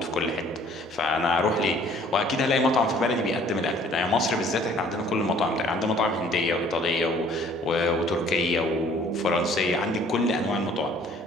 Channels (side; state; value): both; normal; correlation 0.56